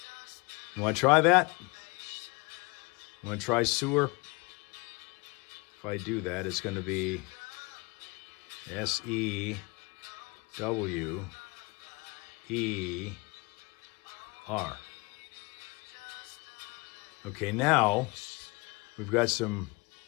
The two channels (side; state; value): right; quieter; 26.3 dB